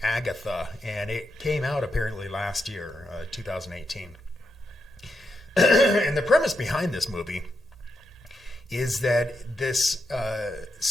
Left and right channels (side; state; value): both; normal; correlation 0.84